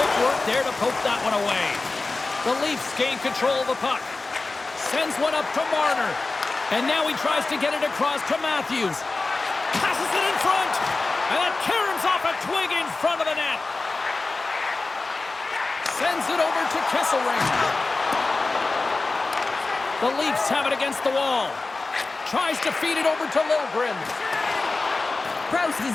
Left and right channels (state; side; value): quieter; right; 3.5 dB